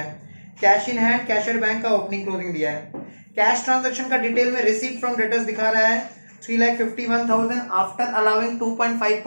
है, cash in hand cashier bank का ओपनिंग क्लोजिंग दिया है। कैश ट्रांजैक्शन का डिटेल में रिसीव्ड फ्रॉम डेटर्स दिखा रहा है 3,51,000 आफ्टर अलाउिंग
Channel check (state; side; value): inverted; both; correlation -1.00